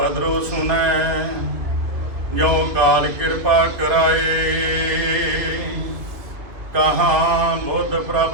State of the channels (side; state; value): left; late; 2.2 ms